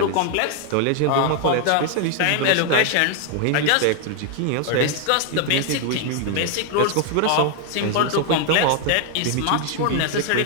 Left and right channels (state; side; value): different; both; correlation 0.00